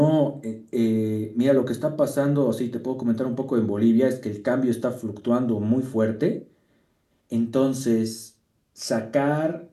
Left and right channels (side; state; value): both; identical; correlation 1.00